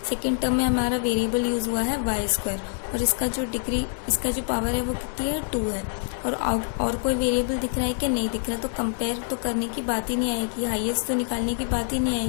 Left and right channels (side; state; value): right; silent; 61 dB below the other